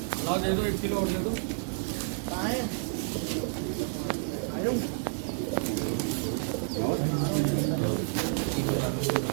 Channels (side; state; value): left; silent; 58 dB below the other